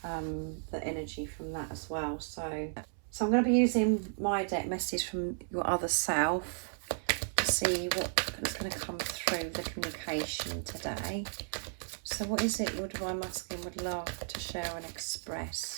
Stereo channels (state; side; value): silent; left; 55 dB below the other